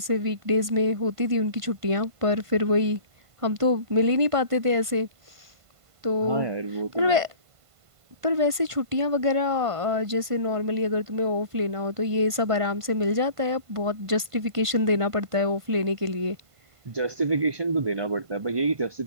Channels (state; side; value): late; left; 1.5 ms